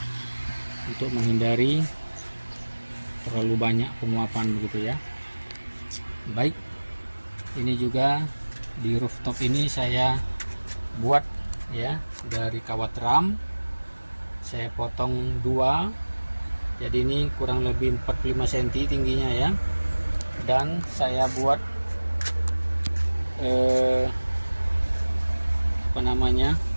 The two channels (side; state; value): both; inverted; correlation -1.00